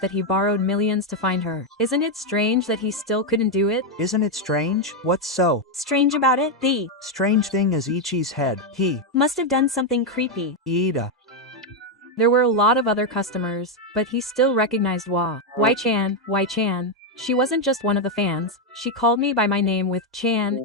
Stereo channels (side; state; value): both; normal; correlation 0.03